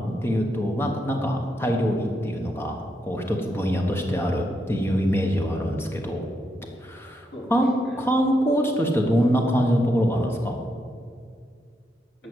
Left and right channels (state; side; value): normal; both; correlation 0.81